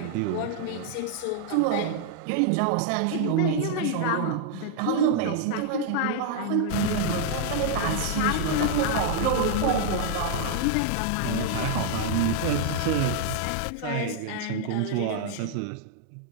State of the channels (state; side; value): different; both; correlation 0.00